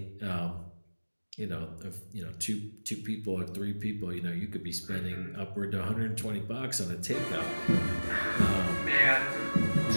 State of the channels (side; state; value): both; inverted; correlation -1.00